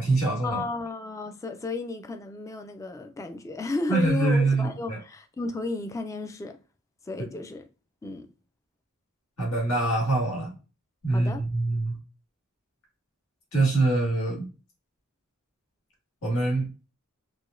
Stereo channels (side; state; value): both; normal; correlation 0.75